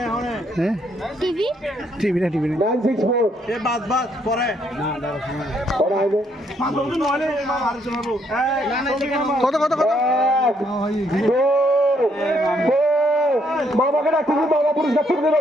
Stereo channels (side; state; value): both; normal; correlation 0.71